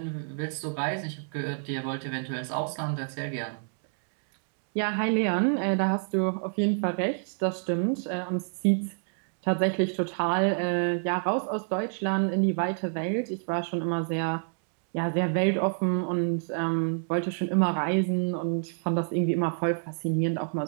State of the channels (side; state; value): left; silent; digital silence